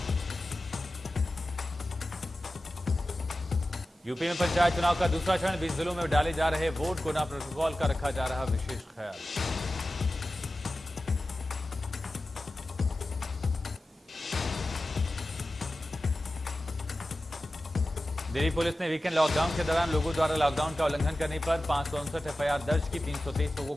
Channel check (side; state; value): both; normal; correlation 0.95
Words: यूपी में पंचायत चुनाव का दूसरा चरण, 20 जिलों में डाले जा रहे वोट। कोरोना प्रोटोकॉल का रखा जा रहा विशेष ख्याल। दिल्ली पुलिस ने वीकेंड लॉकडाउन के दौरान लोगों द्वारा लॉकडाउन का उल्लंघन करने पर 559 एफआईआर दर्ज की, 323 लोगों